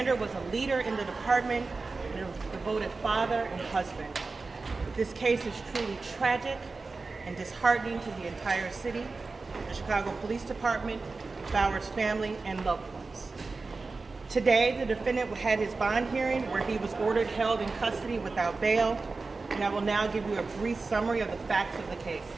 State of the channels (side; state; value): left; quieter; 3.9 dB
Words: was a leader in the department and a devoted father and husband. This case is truly tragic and disheartening to the entire city, the Chicago Police Department, Bauer's family, and loved ones. Today, the defendant had his bond hearing where he was ordered held in custody without bail, and I will now give you a brief summary of the facts of the case.